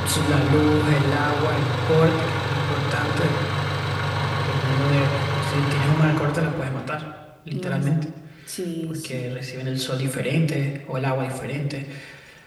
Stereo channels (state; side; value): identical; both; correlation 1.00